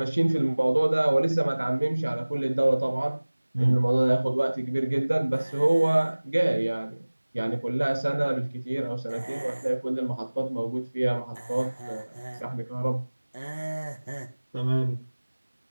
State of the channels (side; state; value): both; inverted; correlation -1.00